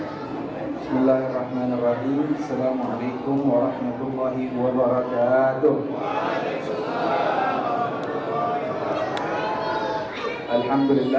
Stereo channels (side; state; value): both; identical; correlation 1.00